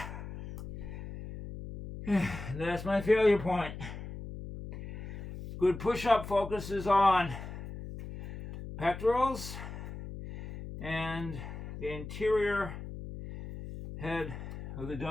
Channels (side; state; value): left; noise; hum, 9 dB below the sound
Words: That's my failure point. Good push-up focuses on pectorals and the interior head of the